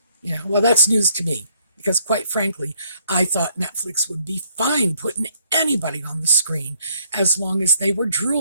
Well, that's news to me, because quite frankly, I thought Netflix would be fine putting anybody on the screen as long as they were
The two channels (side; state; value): both; inverted; correlation -0.67